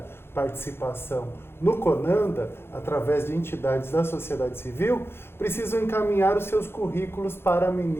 participação no CONANDA, através de entidades da sociedade civil, precisam encaminhar os seus currículos para a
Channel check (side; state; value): right; late; 0.11 ms